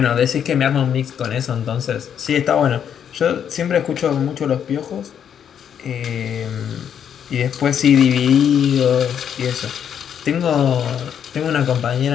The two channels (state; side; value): quieter; right; 8.5 dB